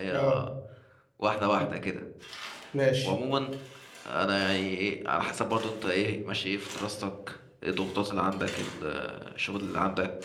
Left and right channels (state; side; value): identical; both; correlation 1.00